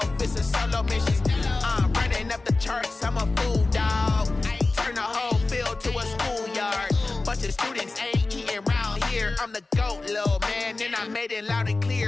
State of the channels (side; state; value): right; quieter; 3.4 dB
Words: it's a solo mission. Running up the charts, I'm a fool, dog. Turn the whole field to a schoolyard. Bunch of students ain't eating round here. I'm the GOAT, little man, and I made it loud and